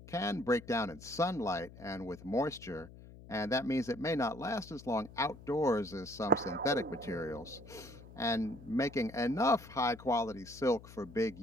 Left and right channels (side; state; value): left; noise; hum, 18 dB below the sound